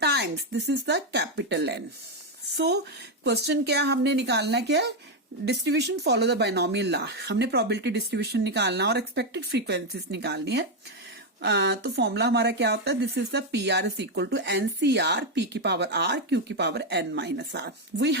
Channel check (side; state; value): both; normal; correlation 0.05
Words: times. This is the capital N. So question क्या हमने निकालना क्या है distribution follow the binomial law. हमने प्रोबेबिलिटी डिस्ट्रीब्यूशन निकालना और एक्सपेक्टेड फ्रीक्वेंसीज निकालनी है. तो फॉर्मूला हमारा क्या होता है this is the PR is equal to NCR P की पावर R Q की power N-R. We